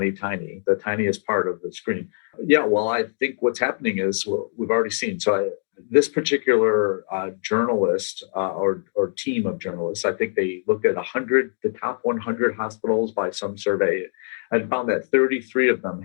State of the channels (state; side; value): silent; right; digital silence